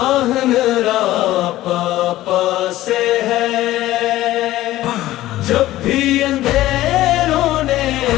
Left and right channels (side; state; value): right; quieter; 15.4 dB